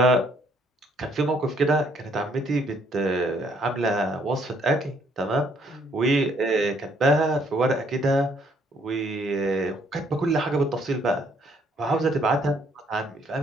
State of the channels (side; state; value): both; normal; correlation 0.66